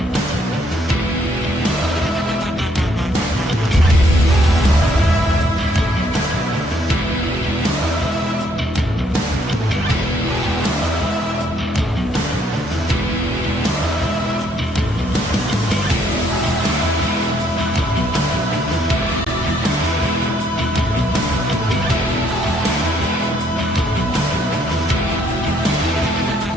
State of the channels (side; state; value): both; normal; correlation 0.69